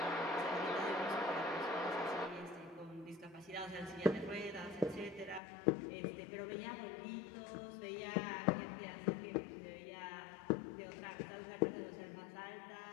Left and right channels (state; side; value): drops out; right; at 5.4 s